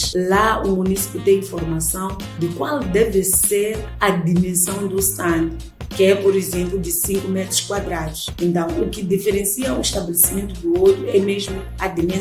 lá o município tem informação de qual deve ser a dimensão do stand, que é, por exemplo, de 5 metros quadrados. Então, o que diferencia um estabelecimento do outro é mesmo a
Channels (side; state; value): both; identical; correlation 1.00